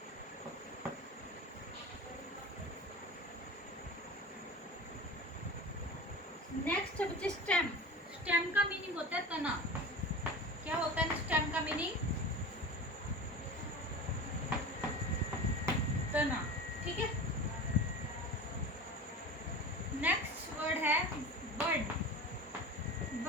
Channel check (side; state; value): both; normal; correlation 0.32